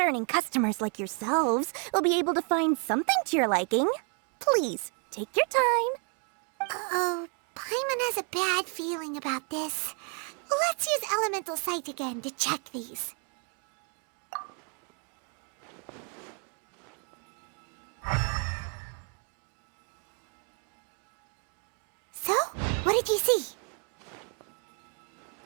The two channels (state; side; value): quieter; left; 38.7 dB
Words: customers like yourselves will be able to find something to your liking. Please, take your time. Oh, Paimon has a bad feeling about this. Let's use Elemental Sight again to check these. So, what did you see?